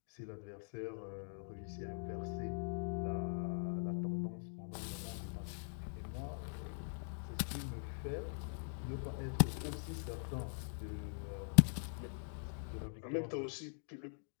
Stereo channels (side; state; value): right; silent; digital silence